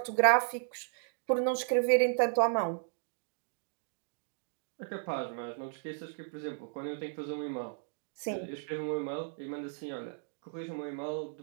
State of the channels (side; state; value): left; silent; digital silence